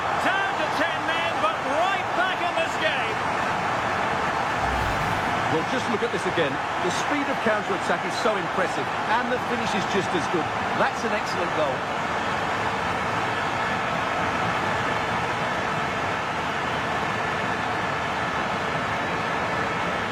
Down to 10 men, but right back in this game. Well, just look at this again. The speed of counter-attack is so impressive, and the finish is just as good. That's an excellent goal.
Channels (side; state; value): both; identical; correlation 1.00